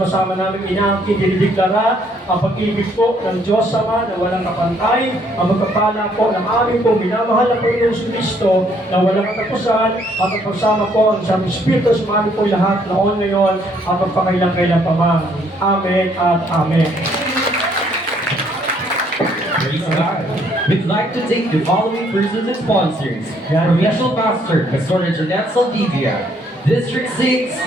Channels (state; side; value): normal; both; correlation 0.67